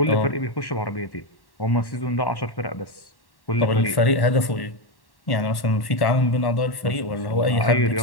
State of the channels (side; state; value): right; late; 1.1 ms